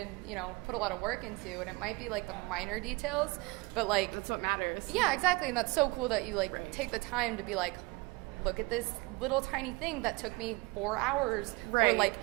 put a lot of work into, and it might be the minor details, but that's what matters. Yeah, exactly. And that's so cool that you take the time to be look at this little tiny thing that took me 4 hours or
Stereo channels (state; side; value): quieter; left; 24.7 dB